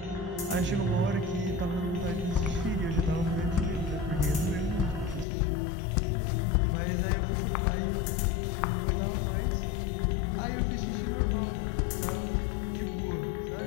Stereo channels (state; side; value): drops out; right; at 5.2 s